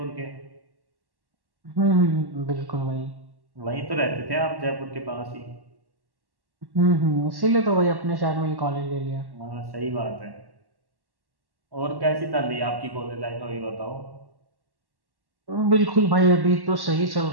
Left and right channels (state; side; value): late; left; 1.1 ms